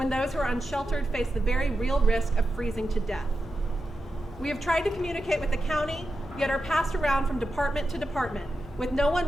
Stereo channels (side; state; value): both; normal; correlation 0.89